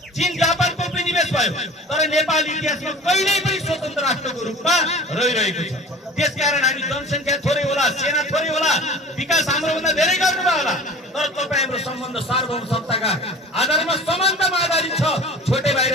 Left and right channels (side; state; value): both; normal; correlation 0.40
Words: चीन जापानको उपनिवेश भयो, तर नेपाल इतिहासमा कहिल्यै पनि स्वतन्त्र राष्ट्रको रूपमा रहिरहेको छ। त्यसकारण हामी जनसङ्ख्या थोरै होला, सेना थोरै होला, विकास हाम्रोभन्दा धेरै गर्नुभयो होला, तर तपाईँ हाम्रो सम्बन्ध सार्वभौम सत्ताका आधारमा समानतामा आधारित छ। छोटे भाइ र